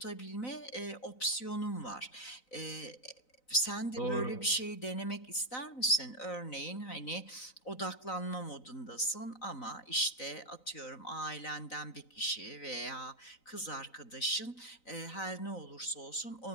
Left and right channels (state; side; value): late; right; 3.9 ms